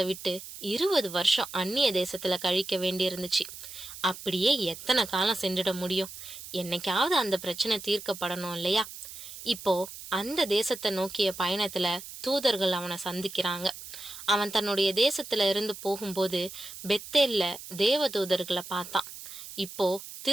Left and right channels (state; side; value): noise; right; hiss, 13 dB below the sound